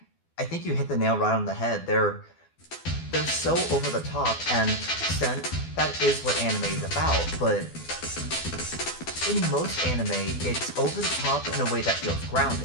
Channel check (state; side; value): late; right; 12 ms